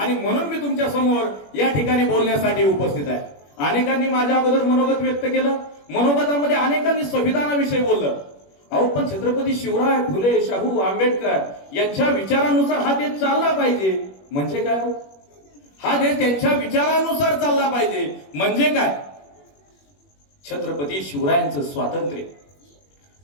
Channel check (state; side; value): late; right; 21 ms